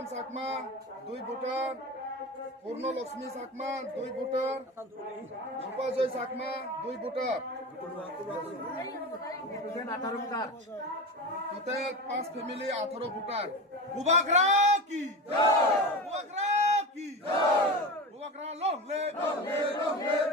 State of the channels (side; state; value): both; normal; correlation 0.25